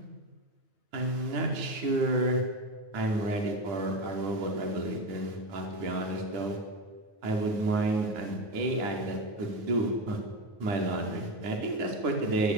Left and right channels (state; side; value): late; left; 9.4 ms